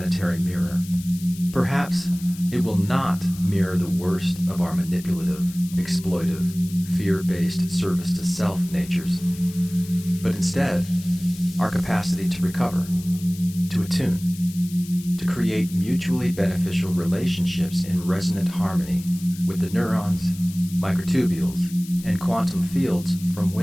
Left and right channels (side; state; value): left; noise; hiss, 17 dB below the sound